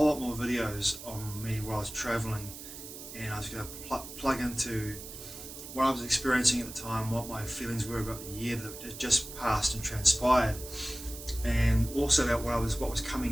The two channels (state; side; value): noise; right; hiss, 12 dB below the sound